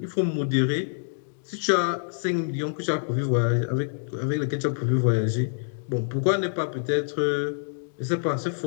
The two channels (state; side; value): silent; right; digital silence